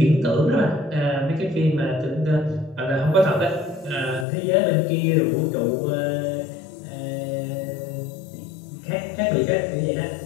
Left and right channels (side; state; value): right; drops out; at 4.2 s